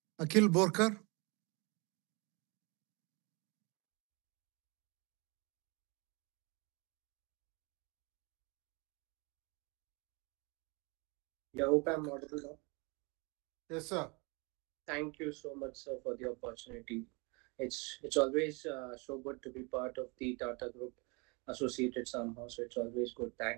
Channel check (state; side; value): quieter; left; 29.8 dB